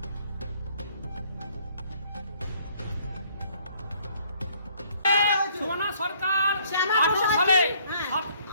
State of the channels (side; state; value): both; inverted; correlation -0.63